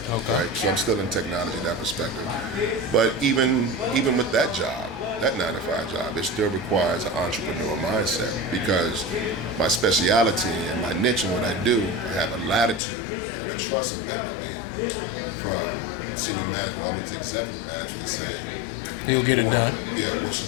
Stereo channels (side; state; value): right; drops out; at 12.8 s